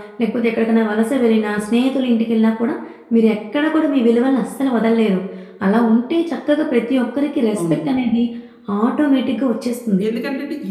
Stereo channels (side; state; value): both; identical; correlation 1.00